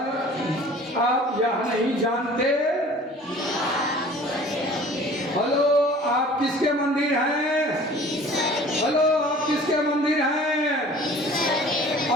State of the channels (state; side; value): normal; both; correlation 0.47